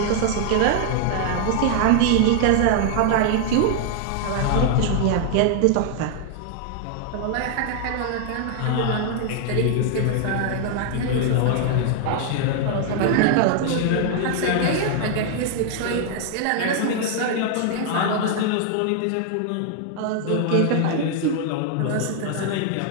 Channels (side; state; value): both; different; correlation 0.00